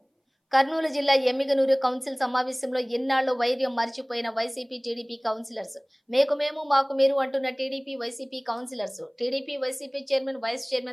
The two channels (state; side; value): identical; both; correlation 1.00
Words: కర్నూలు జిల్లా ఎమ్మిగనూరు కౌన్సిల్ సమావేశంలో ఎన్నాళ్ళు వైర్యం మర్చిపోయిన వైసీపీ టీడీపీ కౌన్సిలర్స్ మేకు మేము మాకు మీరు అంటున్న TDP YCP councillors TDP YCP chairman vice